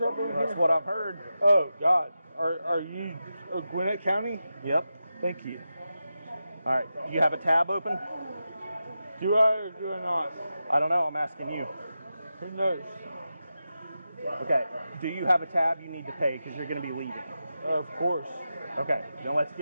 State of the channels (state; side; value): inverted; both; correlation -0.91